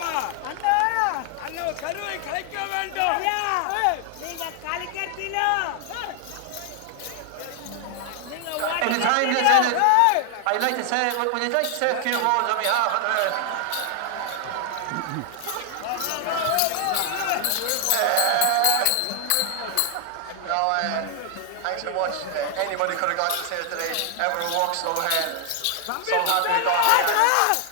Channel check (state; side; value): different; both; correlation 0.00